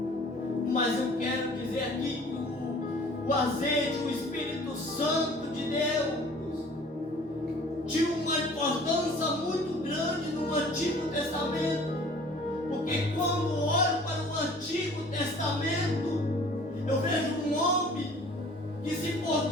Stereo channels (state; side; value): normal; both; correlation 0.50